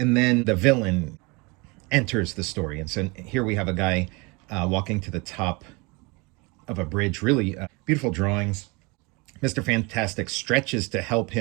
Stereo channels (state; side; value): quieter; left; 27.5 dB